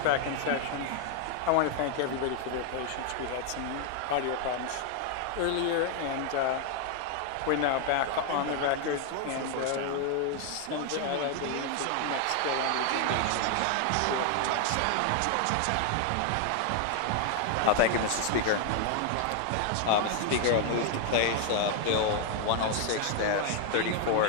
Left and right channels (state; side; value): different; both; correlation 0.00